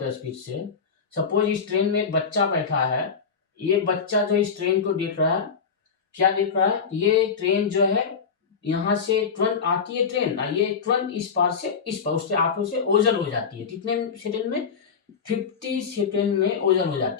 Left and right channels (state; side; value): quieter; right; 6.0 dB